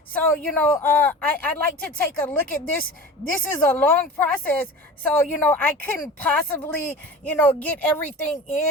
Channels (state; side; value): normal; both; correlation 0.35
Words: So I'd like to take a look at this. This is a long process, so I couldn't possibly get everything